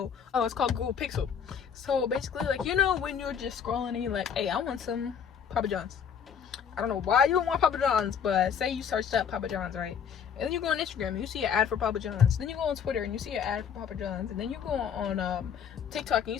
it's called Google Pixel. So basically, like, when you're just scrolling and you're like, hey, I want some Papa John's. I don't know why you would want Papa John's, but say you searched up Papa John's, right? And then you go on Instagram and you see an ad for Papa John's. Then you go on Twitter and you see an ad for Papa John's. And then you go on TikTok and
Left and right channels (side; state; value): right; quieter; 7.6 dB